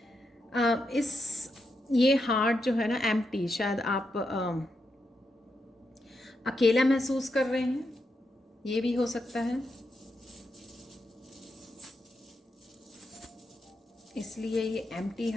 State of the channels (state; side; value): normal; both; correlation 0.84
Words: ये हार्ट जो है ना एम्प्टी, शायद आप अकेला महसूस कर रहे हैं, ये भी हो सकता है, इसलिए ये एम्प्टी